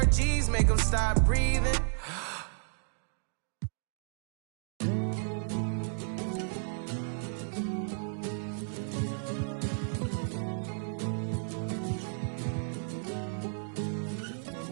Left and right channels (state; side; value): silent; left; digital silence